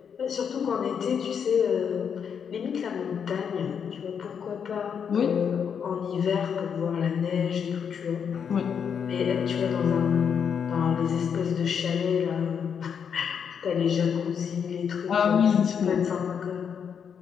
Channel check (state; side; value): quieter; right; 7.3 dB